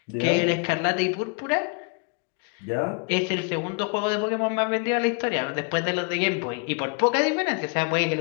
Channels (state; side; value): quieter; right; 35.0 dB